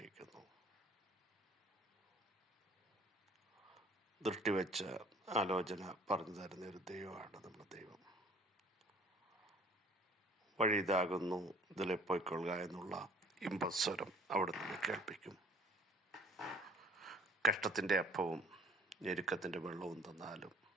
ദൃഷ്ടിവെച്ച ആലോചന പറഞ്ഞു തരുന്ന ഒരു ദൈവമാണ് നമ്മുടെ ദൈവം. വഴി ഇതാകുന്നു, ഇതിലെ പോയിക്കൊള്ളുക എന്നുള്ള ഇമ്പസ്വരം അവിടെ നിന്ന് കേൾപ്പിക്കും. കഷ്ടത്തിൻ്റെ അപ്പവും ഞെരുക്കത്തിൻ്റെ വെള്ളവും തന്നാലും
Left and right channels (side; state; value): both; normal; correlation 0.52